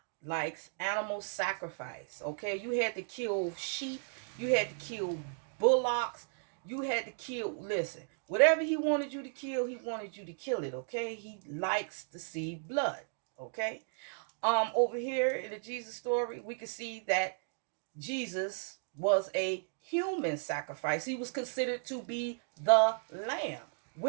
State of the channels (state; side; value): silent; left; digital silence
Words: likes animal sacrifice. Okay, you had to kill sheep, you had to kill bullocks, you had to kill, listen, whatever he wanted you to kill, he wanted you to kill it. Okay, he likes to see blood. Okay. Over here in the Jesus story, we can see that Jesus was a human sacrifice. He was considered to be the lamb,